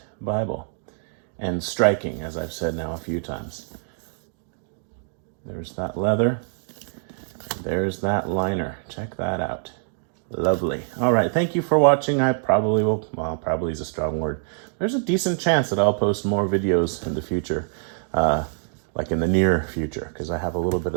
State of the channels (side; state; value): left; silent; digital silence